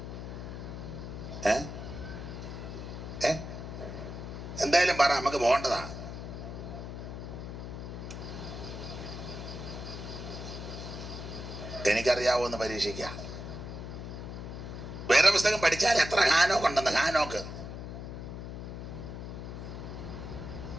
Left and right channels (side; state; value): left; noise; hum, 8 dB below the sound